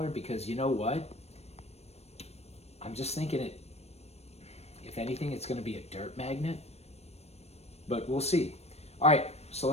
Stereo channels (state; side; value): late; right; 0.31 ms